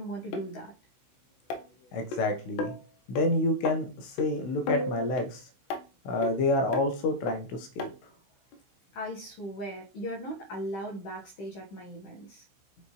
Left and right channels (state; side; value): late; right; 16 ms